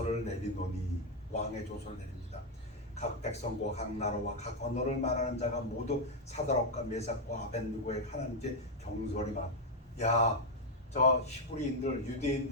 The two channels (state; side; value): normal; both; correlation 0.01